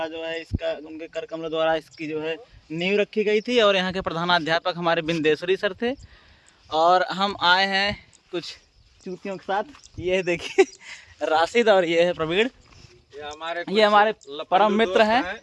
जो है इसका, उनके कर कमल द्वारा इसकी जो है नींव रखी गई थी और यहाँ के प्रधानाध्यापक हमारे बिंदेश्वरी सर थे। और हम आए हैं कुछ चूतियों के साथ। ये देखिए राशिद और ये है प्रवीण। ये हमारे परम मित्र हैं।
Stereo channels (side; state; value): both; identical; correlation 1.00